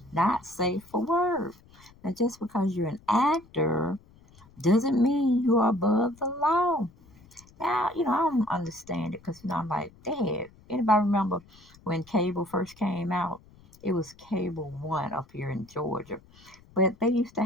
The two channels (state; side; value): noise; left; rumble, 26 dB below the sound